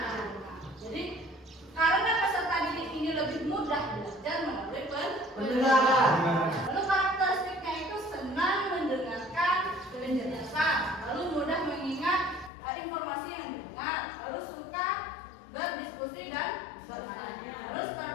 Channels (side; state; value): right; drops out; at 12.5 s